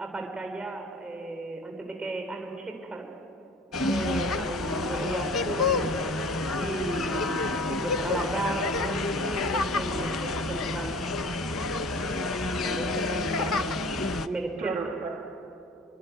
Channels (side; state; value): both; normal; correlation 0.44